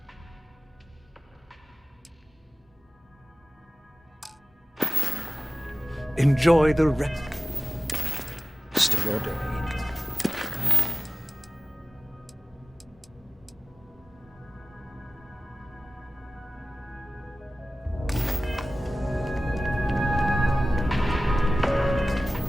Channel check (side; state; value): both; normal; correlation 0.96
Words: Enjoy the rest of your day.